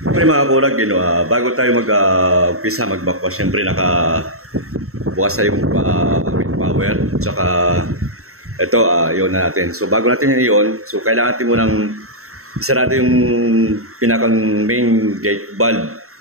mga kurag, bago tayo mag-umpisa magbakwas, siyempre nakabukas tayo yung power. Tsaka, ito, yun na natin. So, bago natin yun, so kailangan natin munang isarado yung pinakang main gate valve.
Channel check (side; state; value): left; late; 0.63 ms